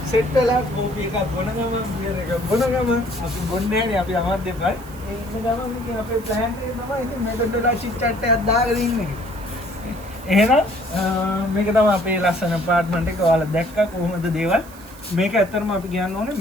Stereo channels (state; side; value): noise; right; hiss, 21 dB below the sound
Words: සෙට් වෙලා කෝපි එකක් බොන ගම බියර් එකක් බොන ගම අපි බොන්නේ නැහැ අපි අමත් දෙපයි. ඒ ඉන්න ගම ඉතින් අපේ ප්ලෑන් එක තමයි ඉතින් මෙතනට වෙලා චිට් චැට් එකක් දාගෙන ඉන්නේ. එහෙනම් මේක තමයි අපේ ලස්සන අප්පාර්ට්මන්ට් එක. ඔයාලා දැක්කා කොහොමද දේවල්. මේක ඇත්තටම අපි කියන්න ඕනේ